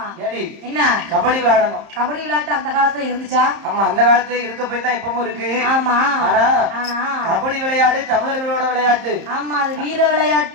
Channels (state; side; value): late; left; 31 ms